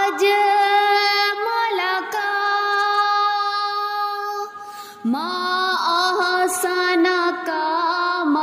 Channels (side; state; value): both; identical; correlation 1.00